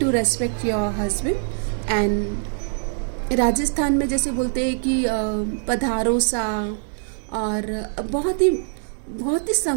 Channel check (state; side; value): silent; left; digital silence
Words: respect your husband. And Rajasthan में जैसे बोलते हैं कि पधारो सा, और बहुत ही